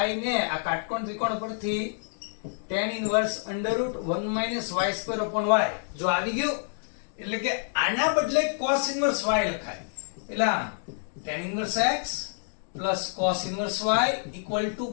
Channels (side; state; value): right; silent; digital silence